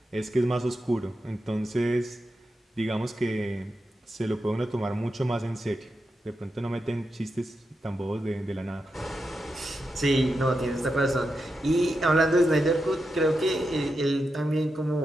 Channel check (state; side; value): normal; both; correlation 0.87